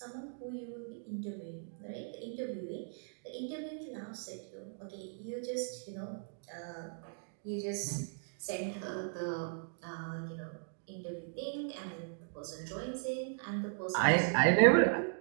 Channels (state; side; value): silent; left; digital silence